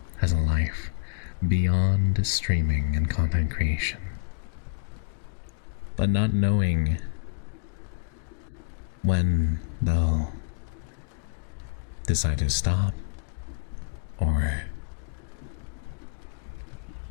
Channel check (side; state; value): right; silent; digital silence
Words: has a life beyond streaming and content creation, but not knowing when they'll decide to stop or